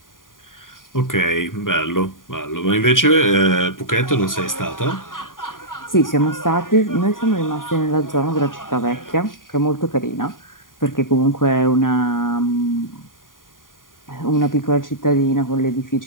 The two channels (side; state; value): right; late; 0.90 ms